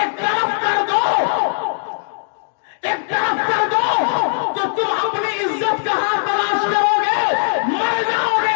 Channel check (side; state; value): right; silent; digital silence